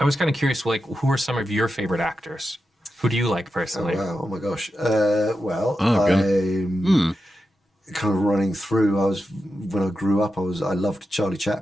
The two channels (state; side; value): normal; both; correlation 0.89